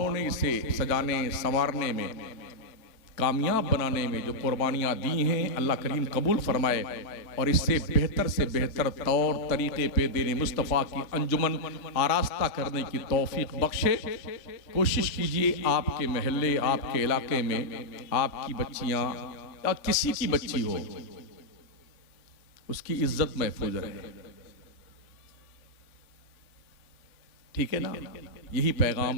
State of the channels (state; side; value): late; right; 3.4 ms